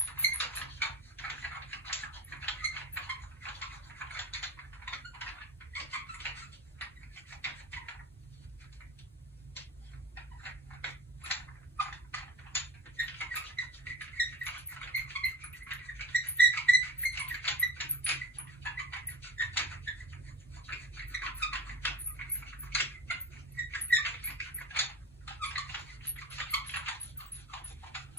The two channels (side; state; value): both; normal; correlation 0.38